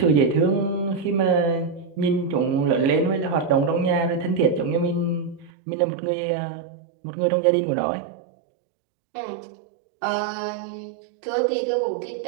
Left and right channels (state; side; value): drops out; left; at 5.5 s